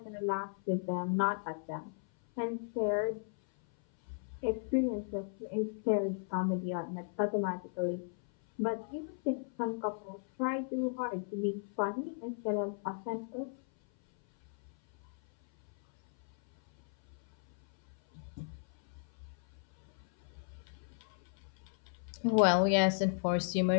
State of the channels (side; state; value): right; silent; 54 dB below the other